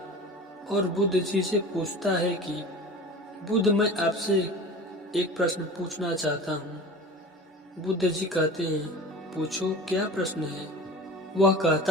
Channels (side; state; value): both; normal; correlation 0.36